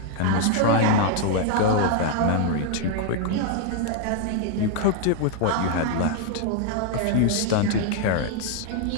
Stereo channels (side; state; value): both; different; correlation 0.00